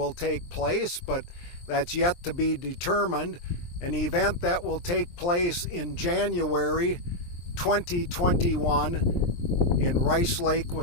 take place, but that's yet to be determined. An event that will take place in January 2021 in Rice Lake,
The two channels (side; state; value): right; late; 23 ms